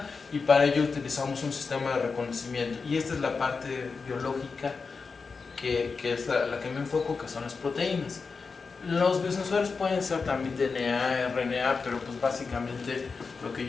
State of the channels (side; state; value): right; quieter; 4.8 dB